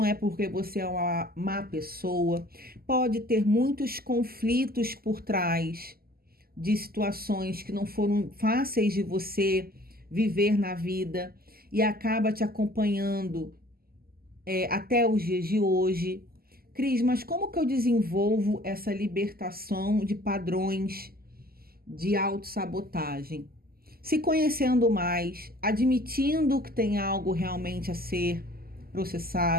é porque você é uma má pessoa, pode ter muitos conflitos por trás de situações que não foram fáceis de você viver na vida e acaba te acompanhando até os dias de hoje. Cris, mas como que eu desenvolvo essa libertação de padrões de autossabotagem? Se conhecendo mais, admitindo que tem algo realmente a ser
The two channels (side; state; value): left; late; 0.44 ms